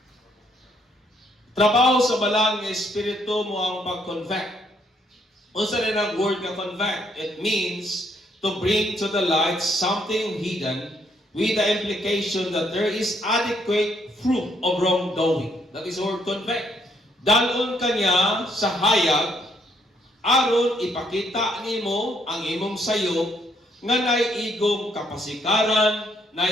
Trabaho sa balang nga Espiritu mo ang pag-convict. Unsa rin ang word nga convict? It means to bring to the light something hidden with the implication that there is adequate fruit of wrongdoing. That is the word convict. Dalon kanya sa hayag, aron ipakita nimo ang imong sayop, nga naiigong kapasikaran,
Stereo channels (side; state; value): both; normal; correlation 0.71